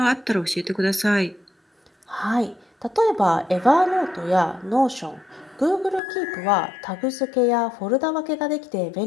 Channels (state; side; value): drops out; right; at 6.0 s